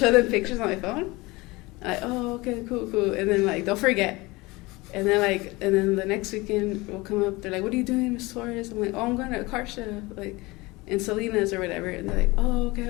them pictures on my phone. Like, oh okay, cool, and then like they'll forget. And then the next weekend will come up. They're like, "What are you doing, Miss Torres?" I'm like, "Oh, I'm going to a car show, like in Salinas or whatever." And they're like, "Oh,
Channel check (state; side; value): quieter; right; 22.7 dB